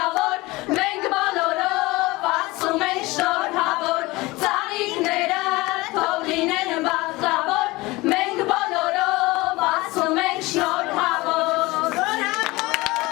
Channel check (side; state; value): right; quieter; 21.4 dB